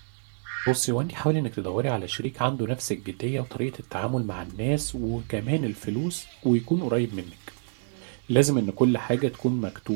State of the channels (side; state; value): left; silent; digital silence